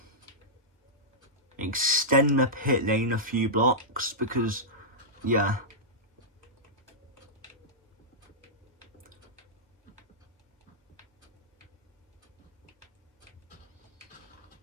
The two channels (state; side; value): normal; both; correlation -0.11